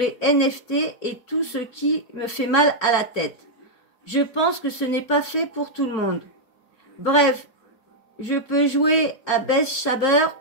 NFT et tout ce qui me fait mal à la tête. Je pense que ce n'est pas fait pour tout le monde. Bref, je peux jouer à Best Shaber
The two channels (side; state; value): right; late; 4.4 ms